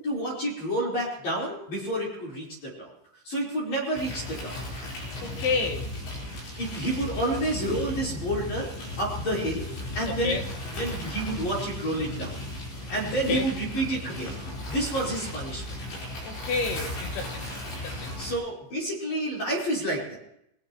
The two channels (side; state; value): right; late; 15 ms